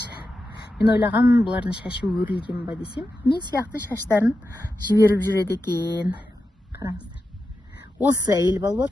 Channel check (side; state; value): both; normal; correlation 0.90